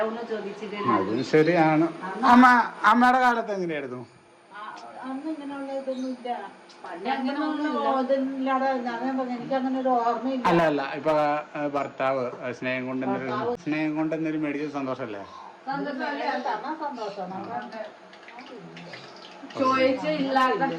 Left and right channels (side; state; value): both; identical; correlation 1.00